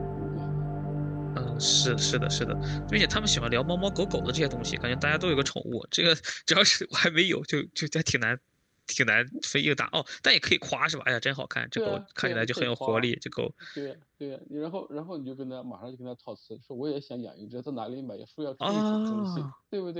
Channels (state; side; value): identical; both; correlation 1.00